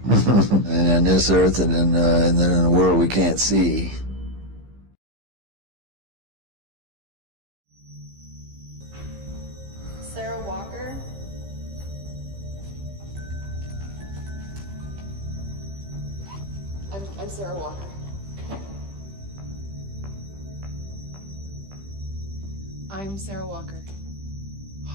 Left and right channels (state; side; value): late; left; 15 ms